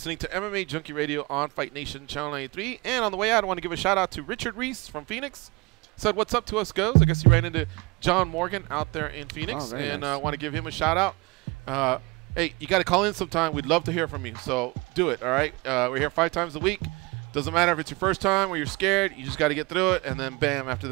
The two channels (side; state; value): left; quieter; 24.7 dB